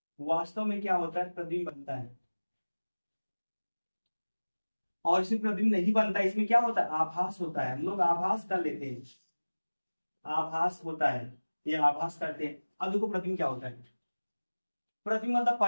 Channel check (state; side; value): inverted; both; correlation -1.00